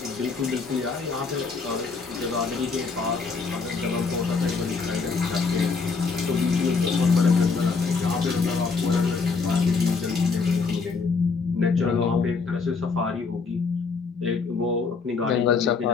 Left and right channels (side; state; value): right; quieter; 4.7 dB